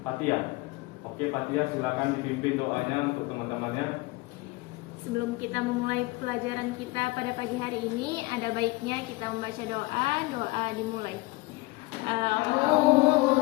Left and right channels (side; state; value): right; quieter; 23.0 dB